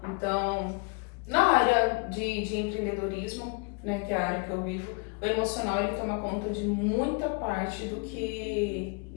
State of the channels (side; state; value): right; quieter; 32.6 dB